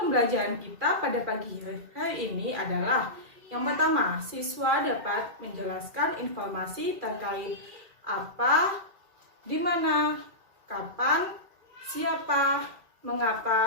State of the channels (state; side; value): late; left; 2.4 ms